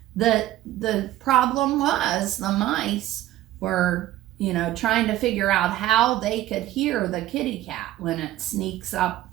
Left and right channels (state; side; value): quieter; left; 14.6 dB